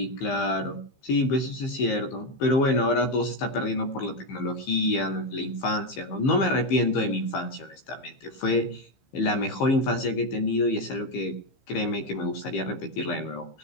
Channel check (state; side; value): late; right; 15 ms